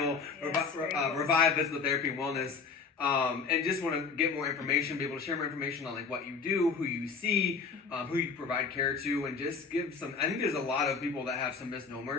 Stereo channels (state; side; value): quieter; right; 5.2 dB